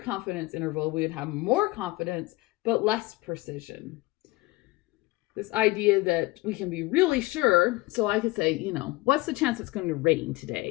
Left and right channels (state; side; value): quieter; right; 20.9 dB